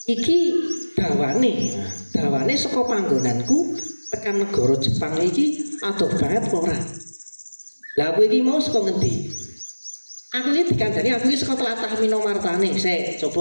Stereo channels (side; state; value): both; inverted; correlation -1.00